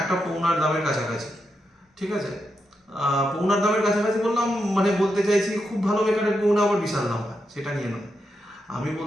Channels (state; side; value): normal; both; correlation 0.85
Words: একটা পৌনার দামের কাছাকাছি। ঠিক আছে, পৌনার দামের কাছাকাছি বললাম, মানে বলতে চাইছি খুব ভালো বেকারের পৌনা আবার বিশাল দাম হয়, সেটা নিয়ে নয়। আমি